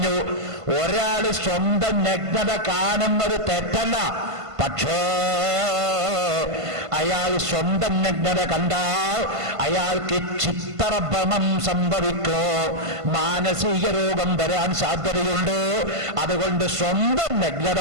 ഒരാൾ സ്വന്തം നഗ്നത കാണുന്നത് തെറ്റല്ല, പക്ഷേ അയാൾ സ്വന്തം നഗ്നത കണ്ടാൽ അയാൾക്ക് ചിത്തഭ്രമം സംഭവിക്കോ, മാനസിക രോഗം വരാൻ സാധ്യതയുണ്ട്. അതുകൊണ്ട് സ്വന്തം നഗ്നത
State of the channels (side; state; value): left; late; 1.5 ms